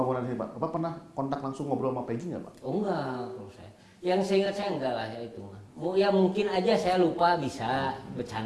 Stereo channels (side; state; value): both; identical; correlation 1.00